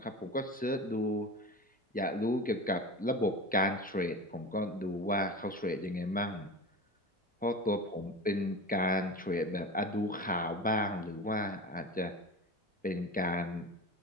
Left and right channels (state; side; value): normal; both; correlation 0.30